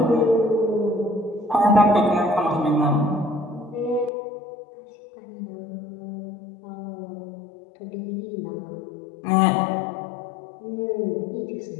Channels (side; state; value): right; drops out; at 4.1 s